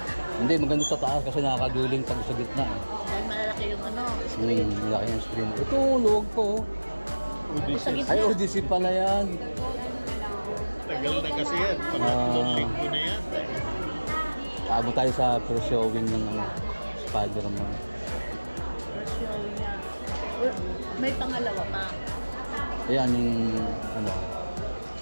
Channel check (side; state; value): both; inverted; correlation -1.00